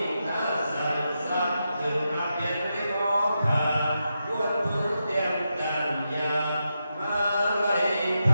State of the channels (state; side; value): inverted; both; correlation -0.86